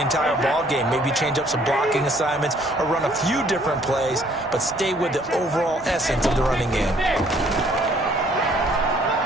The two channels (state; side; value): normal; both; correlation 0.62